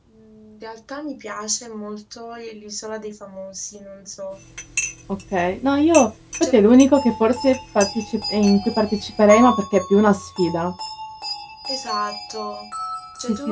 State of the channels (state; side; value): identical; both; correlation 1.00